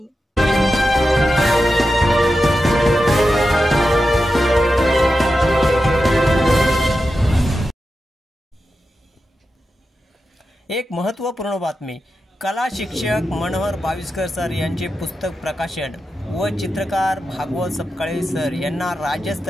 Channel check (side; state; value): both; normal; correlation 0.90